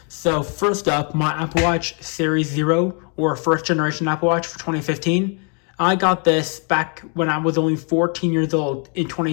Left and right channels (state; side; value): quieter; right; 38.6 dB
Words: So first up, my Apple Watch Series 0 or first generation Apple Watch for 2015. I got this back when I was only 14 years old in